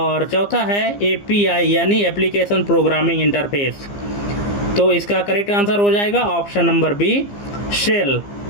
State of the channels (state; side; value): late; right; 15 ms